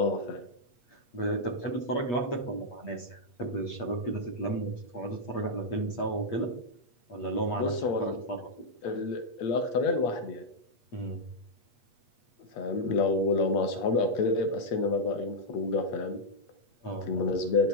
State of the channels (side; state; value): right; late; 8.4 ms